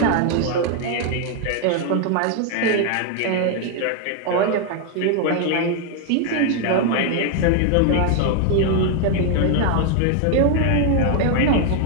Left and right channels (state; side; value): different; both; correlation 0.00